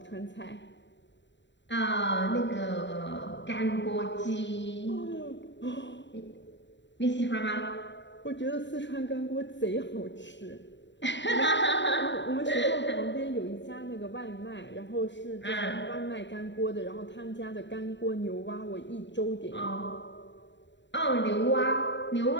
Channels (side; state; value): right; late; 0.52 ms